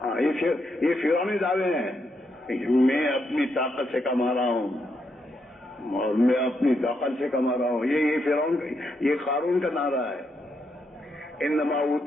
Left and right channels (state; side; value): normal; both; correlation 0.80